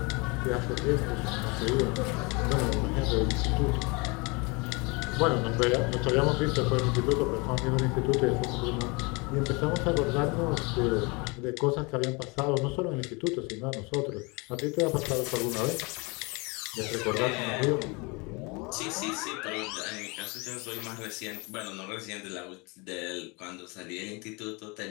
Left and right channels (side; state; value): right; quieter; 28.4 dB